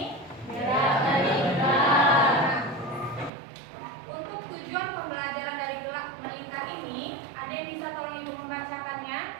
Nah, untuk tujuan pembelajaran dari gerak melingkar ini, ada yang bisa tolong Ibu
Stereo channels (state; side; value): drops out; left; at 3.3 s